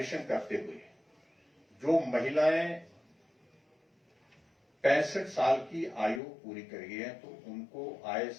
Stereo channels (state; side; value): drops out; right; at 6.2 s